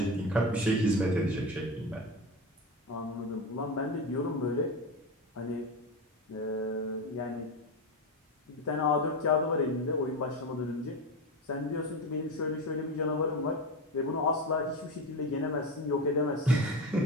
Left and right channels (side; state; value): both; normal; correlation 0.21